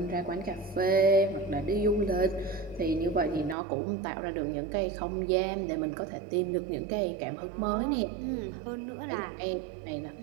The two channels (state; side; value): drops out; left; at 3.6 s